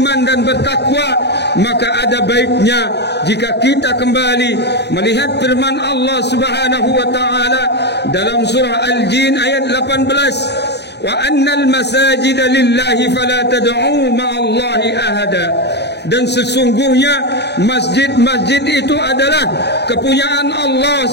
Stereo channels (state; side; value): late; right; 0.49 ms